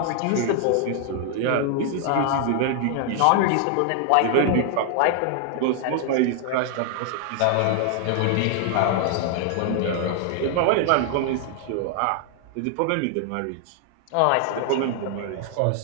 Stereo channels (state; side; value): different; both; correlation 0.00